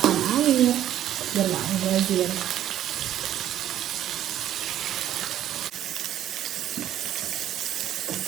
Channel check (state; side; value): quieter; left; 11.7 dB